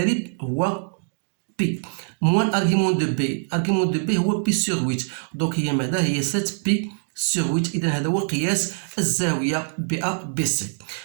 هو بي. موان ارغيمون دو بي، ارغيمون دو بي هو بي سور 8، دونك هي ماذا؟ هي 7 بي سور 8. اذا هذا هو قياس الزاويه بي ا بي سي.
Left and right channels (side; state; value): left; silent; digital silence